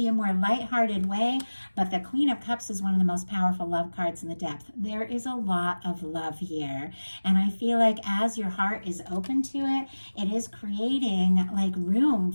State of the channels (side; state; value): both; inverted; correlation -1.00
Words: a more lighthearted way. But the Queen of Cups is one of the most powerful love cards in the depth. There is a lot of love here. And I feel like as your heart is open to it, it is creating like room